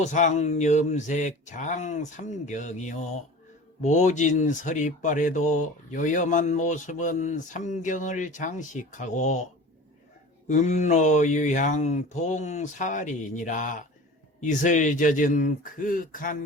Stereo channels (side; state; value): both; normal; correlation 0.38